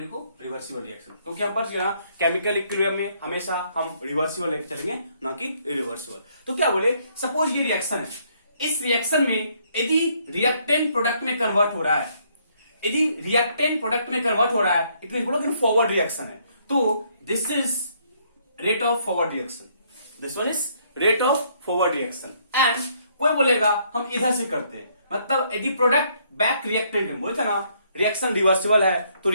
को, रिवर्सिबल रिएक्शन। क्योंकि हम पढ़ चुके ना केमिकल इक्विलिब्रियम में हमेशा हम रिवर्सिबल लेके चलेंगे, ना कि इरिवर्सिबल। तो क्या बोले, सपोज ये रिएक्शन है, इस रिएक्शन में यदि रिएक्टेंट प्रोडक्ट में कन्वर्ट हो रहा है, यदि रिएक्टेंट प्रोडक्ट में कन्वर्ट हो रहा है, इट मीन बोलो कि फॉरवर्ड रिएक्शन है। तो this is rate of forward reaction, this one is rate of forward reaction. And कोई बोलेगा हम इधर से करते हैं, मतलब यदि प्रोडक्ट बैक रिएक्टेंट है, बोलते ना रिएक्शन रिवर्सिबल है तो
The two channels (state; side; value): inverted; both; correlation -0.68